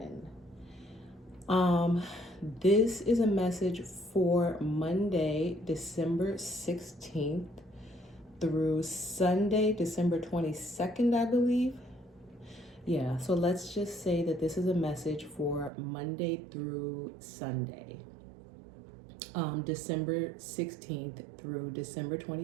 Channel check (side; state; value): left; drops out; at 15.7 s